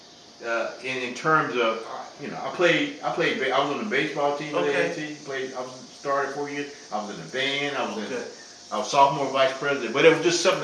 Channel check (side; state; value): both; identical; correlation 1.00